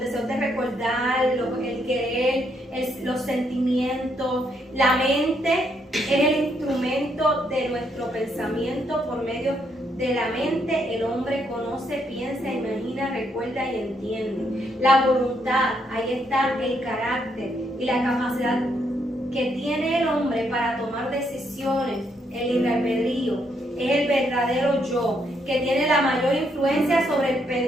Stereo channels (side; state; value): both; normal; correlation 0.74